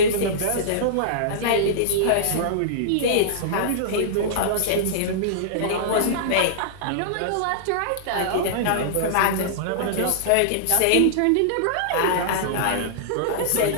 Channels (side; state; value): both; different; correlation -0.02